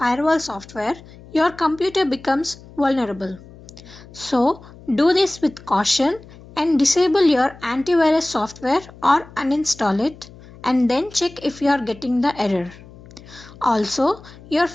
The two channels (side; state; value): left; noise; hum, 20 dB below the sound